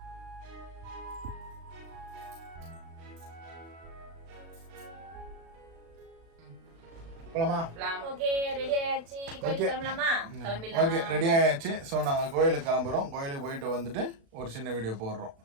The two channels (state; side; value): late; left; 36 ms